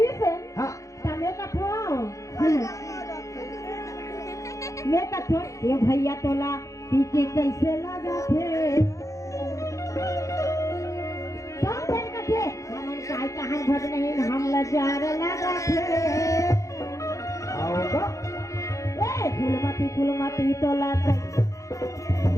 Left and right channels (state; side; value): late; right; 0.15 ms